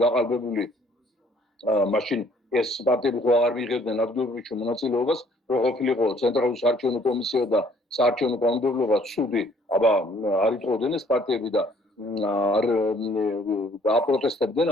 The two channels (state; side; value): normal; both; correlation 0.61